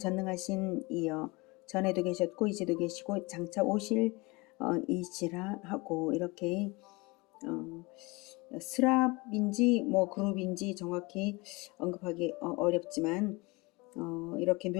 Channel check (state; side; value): quieter; right; 25.0 dB